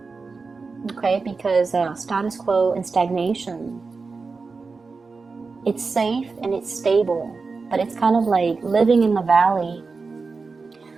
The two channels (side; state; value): left; quieter; 4.4 dB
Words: Okay, because status quo and stagnation, it's safe and it's stable, but it's kind of like living in the valley.